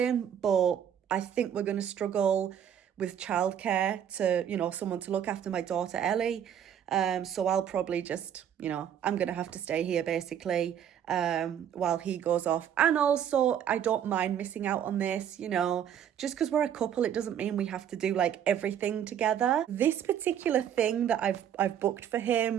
but I think we're going to struggle with childcare to, you know, someone to look after my daughter Ellie. So I'll probably just, you know, I'm going to have to stay here basically while he goes off. And also, I don't mind missing out on this, you know, just because we're a couple, it doesn't mean we have to do like everything together. This particular thing that I've booked for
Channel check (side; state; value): left; quieter; 9.4 dB